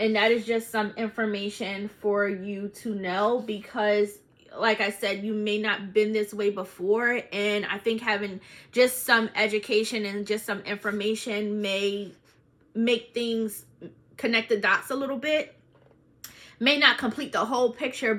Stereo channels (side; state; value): both; identical; correlation 1.00